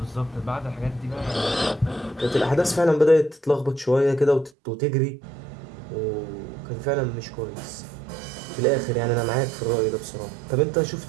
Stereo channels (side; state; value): left; drops out; at 4.5 s